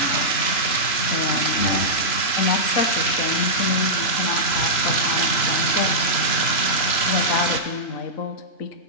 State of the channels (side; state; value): right; late; 3.0 ms